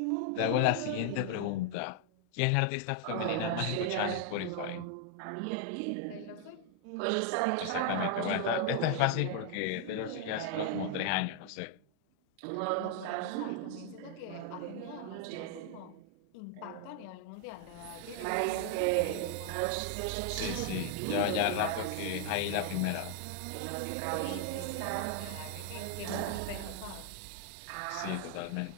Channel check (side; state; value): both; different; correlation 0.00